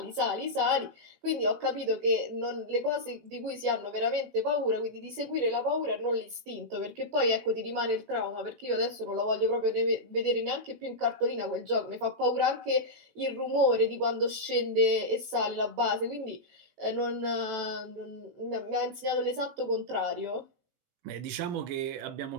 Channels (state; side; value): late; left; 18 ms